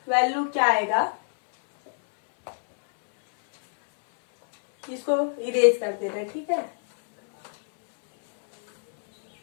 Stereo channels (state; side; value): silent; right; 63 dB below the other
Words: वैल्यू क्या आएगा, इसको इरेज कर देना है, ठीक है।